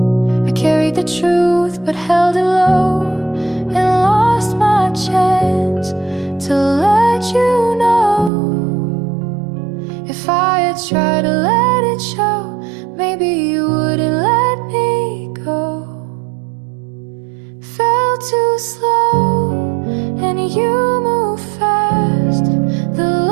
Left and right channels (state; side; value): drops out; left; at 8.3 s